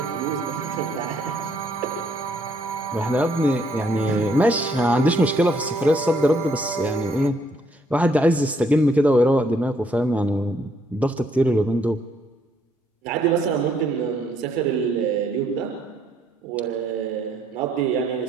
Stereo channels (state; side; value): normal; both; correlation 0.69